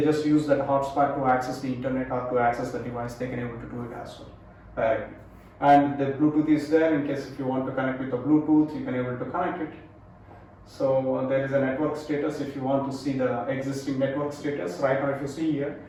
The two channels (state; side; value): identical; both; correlation 1.00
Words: just use that hotspot to access the internet or to access the device. They can able to do it as well directly. And the Bluetooth is there. In case if you want to connect with the Bluetooth, you can able to connect it. So there is a network status. If you want to see the existing network status, right now if you see here,